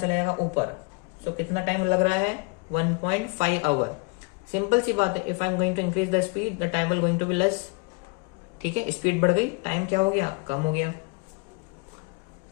जाएगा? ऊपर। सो कितना टाइम लग रहा है? 1.5 आवर। सिंपल सी बात है, if I am going to increase the speed the time will going to be less. ठीक है, स्पीड बढ़ गई, टाइम क्या हो गया? कम हो गया।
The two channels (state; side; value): quieter; right; 30.7 dB